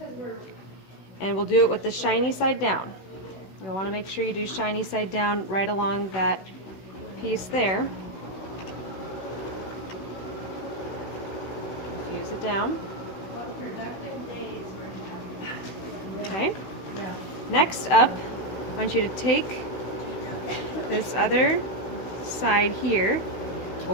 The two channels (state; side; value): late; right; 16 ms